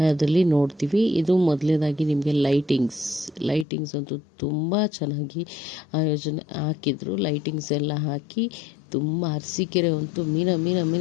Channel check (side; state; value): right; drops out; at 3.7 s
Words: ನೋಡ್ತೀವಿ. ಇದು ಮೊದಲನೇದಾಗಿ ನಿಮಗೆ ಲೈಟಿಂಗ್ಸ್ ಅಂತೂ ತುಂಬ ಚೆನ್ನಾಗಿ ಆಯೋಜನೆ ಹಾಕಿದ್ರು. ಲೈಟಿಂಗ್ಸ್ ಎಲ್ಲ ಹಾಕಿ ತುಂಬ ಅರಸೀಕೆರೆ ಅಂತೂ